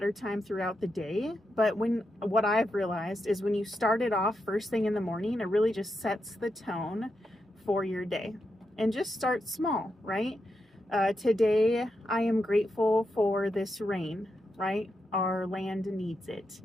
time throughout the day, but what I've realized is when you start it off first thing in the morning, it really just sets the tone for your day. And just start small, right? Today, I am grateful for this rain, right? Our land needs it.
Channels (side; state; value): both; normal; correlation 0.85